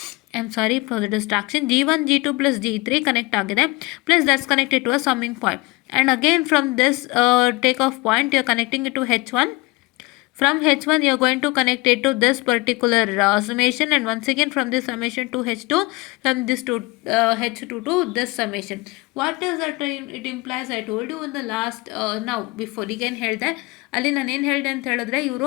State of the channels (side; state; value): right; quieter; 23.7 dB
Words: I'm sorry for the distraction, G1 G2 plus G3 connect agide, plus that's connected to a summing point. And again from this takeoff point you are connecting it to H1. From H1 you are going to connect it to this particular summation, and once again from this summation to H2, from this to H2 to this summation. What is that it implies? I told you in the last now before again ಹೇಳ್ದೆ, ಅಲ್ಲಿ ನಾನು ಏನು ಹೇಳಿದೆ ಅಂತ ಹೇಳಿದ್ರೆ,